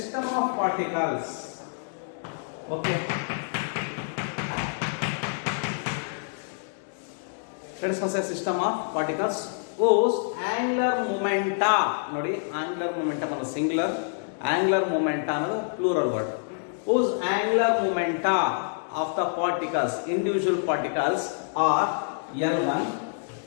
of particles. Okay. Let us consider a system of particles whose angular momenta, ನೋಡಿ angular momentum ಅನ್ನೋದು singular, angular momenta ಅನ್ನೋದು plural word. Whose angular momenta of the particles, individual particles are L1,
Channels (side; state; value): right; silent; digital silence